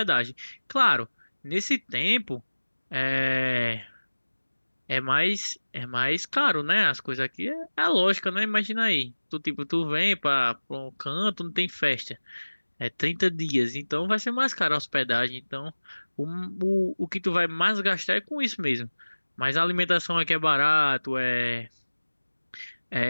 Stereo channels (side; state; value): both; inverted; correlation -1.00